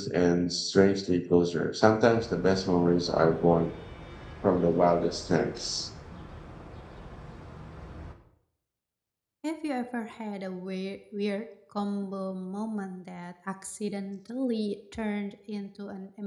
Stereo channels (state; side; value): identical; both; correlation 1.00